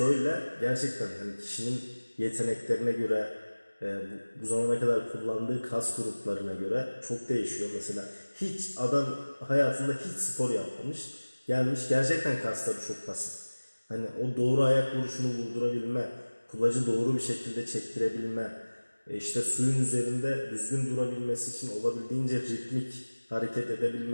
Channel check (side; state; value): both; inverted; correlation -1.00